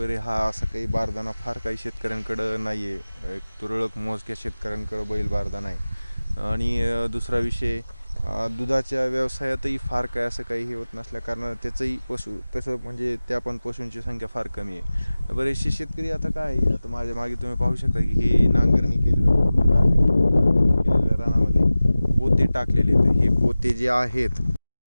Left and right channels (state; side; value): inverted; both; correlation -0.96